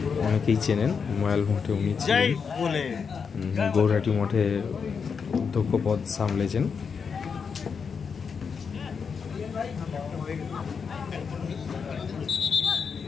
অনেকেই চেনেন, ময়াল মঠে উনি ছিলেন, গৌরহাটি মঠে অধ্যক্ষ পদ সামলেছেন।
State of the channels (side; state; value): right; quieter; 6.0 dB